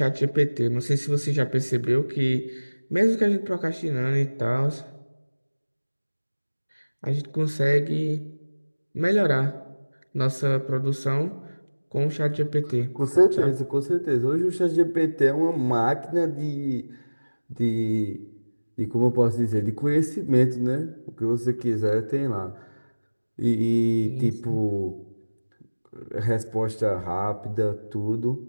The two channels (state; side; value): inverted; both; correlation -1.00